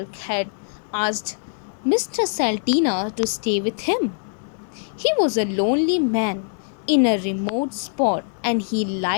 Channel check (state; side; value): silent; right; digital silence